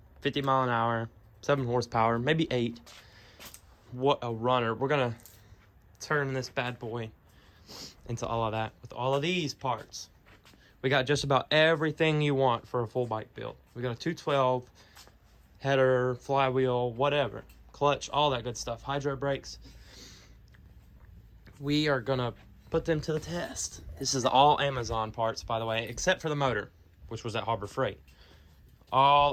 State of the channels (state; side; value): identical; both; correlation 1.00